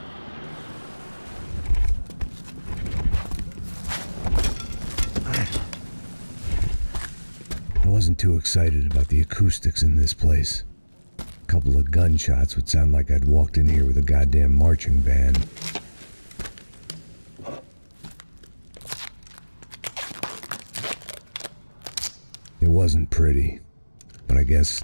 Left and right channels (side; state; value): both; inverted; correlation -1.00